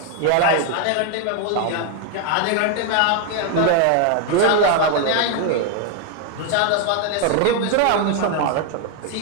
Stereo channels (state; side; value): different; both; correlation 0.01